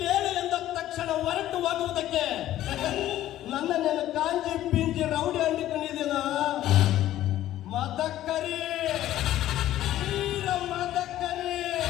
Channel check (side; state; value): right; quieter; 13.5 dB